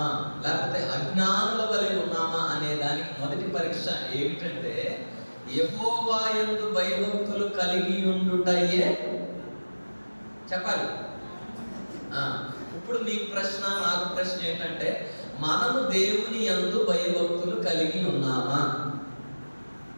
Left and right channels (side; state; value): both; inverted; correlation -1.00